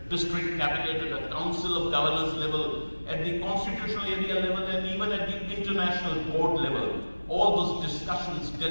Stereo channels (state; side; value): inverted; both; correlation -1.00